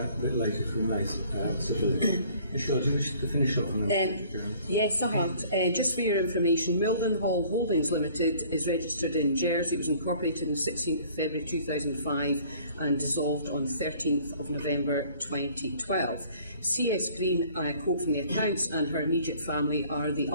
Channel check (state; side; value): inverted; both; correlation -0.55